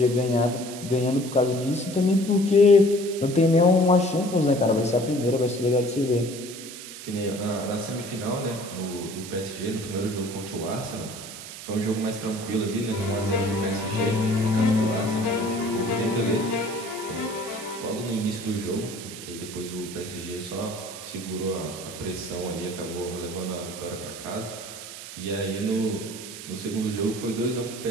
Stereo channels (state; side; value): noise; right; hiss, 12 dB below the sound